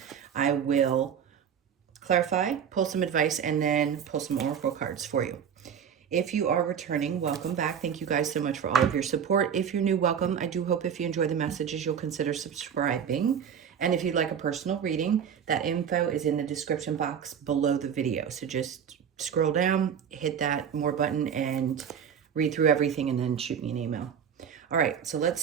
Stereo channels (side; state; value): left; quieter; 7.9 dB